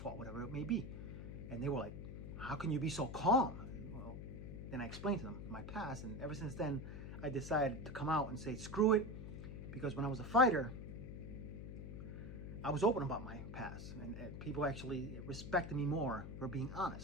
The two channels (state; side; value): noise; left; hum, 8 dB below the sound